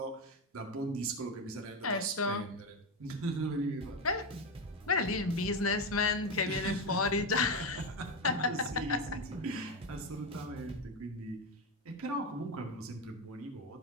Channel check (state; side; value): normal; both; correlation 0.13